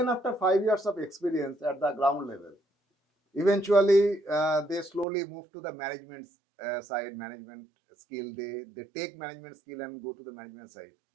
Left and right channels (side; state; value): left; drops out; at 5.1 s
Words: after 5 years of experience at the ground level. Eventually, they slowly move to the management side, management skill. They take management skill and go to the management side.